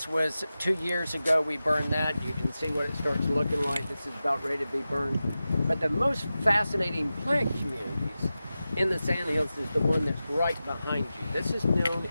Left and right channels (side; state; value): both; inverted; correlation -0.93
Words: was 2 years ago we burned that. You can see what it starts looking like. This is about ready to be burned. But the most fascinating plant communities in the sandhills is the one that's right behind you. This is known